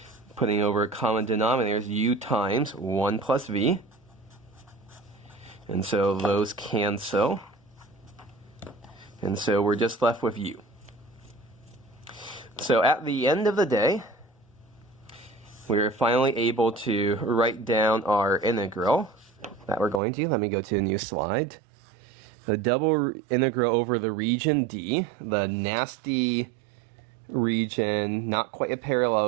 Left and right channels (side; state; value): left; drops out; at 20.0 s